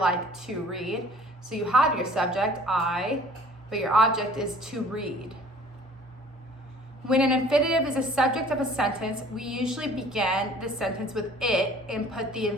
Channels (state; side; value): normal; both; correlation 0.51